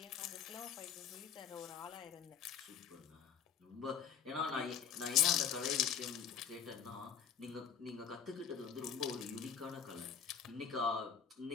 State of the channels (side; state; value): right; quieter; 7.8 dB